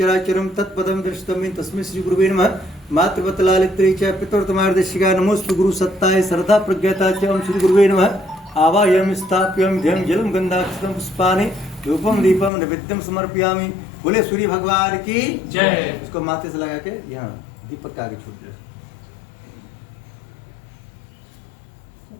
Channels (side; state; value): right; drops out; at 12.5 s